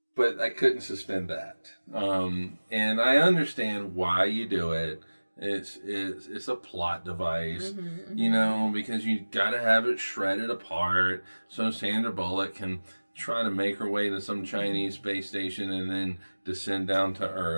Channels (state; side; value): inverted; both; correlation -1.00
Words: but I couldn't suspend that. And I understand why you do it. It's a plot device, you know, because you got to have it shredded apart so Sandra Bullock can try to make her way to some Chinese space station and then descend down to